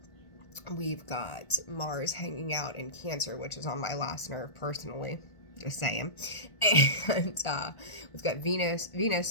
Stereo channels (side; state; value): right; late; 1.4 ms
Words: We've got Mars hanging out in Cancer, which is on my last nerve personally. Just saying. And we've got Venus.